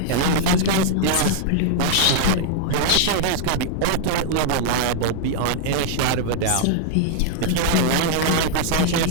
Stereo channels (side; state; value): both; different; correlation -0.01